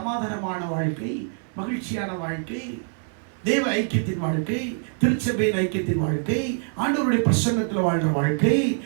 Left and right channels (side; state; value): left; silent; 57 dB below the other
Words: வாழ்க்கை, மகிழ்ச்சியான வாழ்க்கை, தேவ ஐக்கியத்தின் வாழ்க்கை, திருச்சபையின் ஐக்கியத்தின் வாழ்க்கை, ஆண்டவருடைய பிரசன்னத்தில் வாழ்ற வாழ்க்கை,